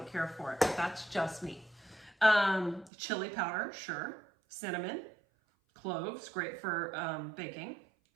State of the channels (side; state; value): left; drops out; at 2.9 s